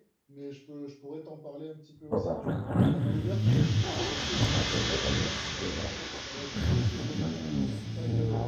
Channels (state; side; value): identical; both; correlation 1.00